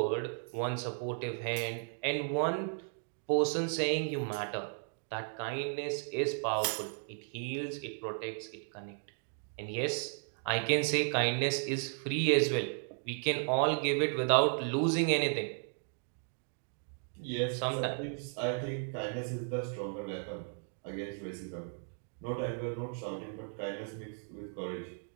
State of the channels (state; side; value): silent; left; 54 dB below the other